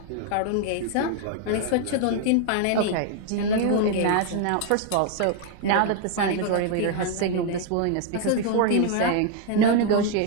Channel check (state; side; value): different; both; correlation 0.00